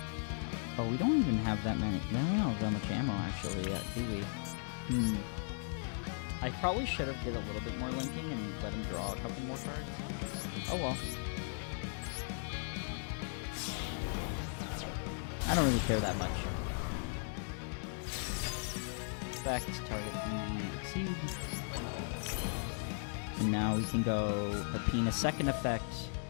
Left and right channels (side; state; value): right; silent; 53 dB below the other